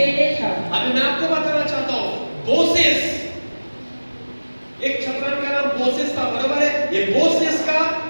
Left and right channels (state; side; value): inverted; both; correlation -1.00